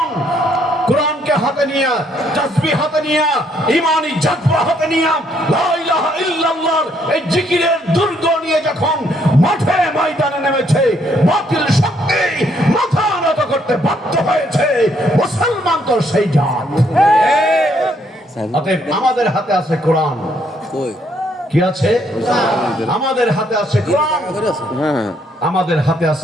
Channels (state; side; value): normal; both; correlation 0.70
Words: কোরআনকে হাতে নিয়ে, তাসবিহ হাতে নিয়ে, ঈমানি জজ্বা হাতে নিয়ে, লা ইলাহা ইল্লাল্লাহর এই জিকিরের দুর্গ নিয়ে যখন মাঠে ময়দানে নেমেছে, বাতিল শক্তি মাথা নত করতে বাধ্য হয়েছে। মুসলমান তো সেই জাত। অতএব আমাদের হাতে আছে কোরআন। কি আছে? আমাদের হাতে আছে কোরআন, আমাদের হাতে আছে